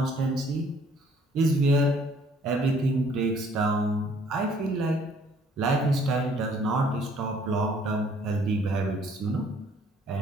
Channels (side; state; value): both; normal; correlation 0.60